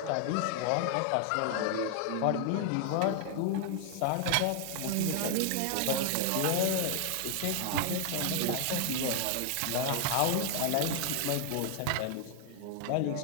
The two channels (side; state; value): both; different; correlation 0.00